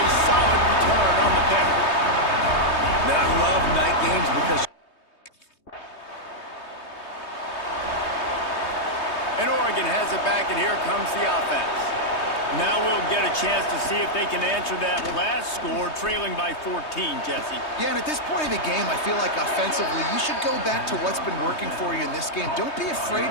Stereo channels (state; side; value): late; right; 3.2 ms